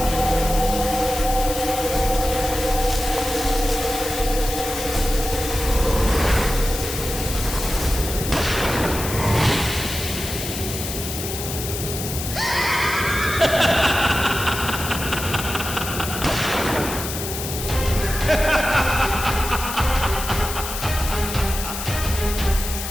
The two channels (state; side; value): noise; left; hiss, 6 dB below the sound